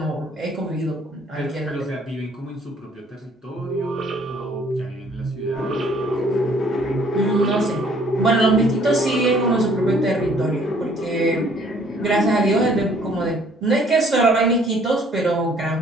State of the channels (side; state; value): both; normal; correlation 0.60